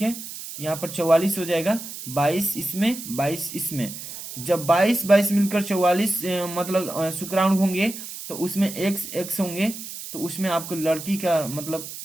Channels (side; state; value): right; noise; hiss, 10 dB below the sound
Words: है, यहाँ पर 44 हो जाएगा, 22 इसमें 22 इसमें। जब 22 मिलकर 44 मतलब शुक्राणु होंगे, तो उसमें x होंगे, तो उसमें आपको लड़की का